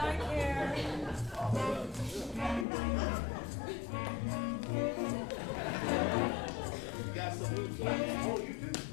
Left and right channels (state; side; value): drops out; right; at 2.7 s